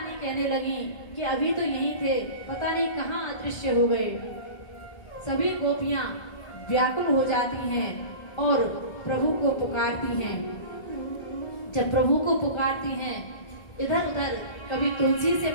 कहने लगी कि अभी तो यही थे, पता नहीं कहाँ अदृश्य हो गए। सभी गोपियां व्याकुल हो जाती हैं और प्रभु को पुकारती हैं। जब प्रभु को पुकारती हैं इधर उधर, कभी तुलसी से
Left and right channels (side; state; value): right; late; 1.3 ms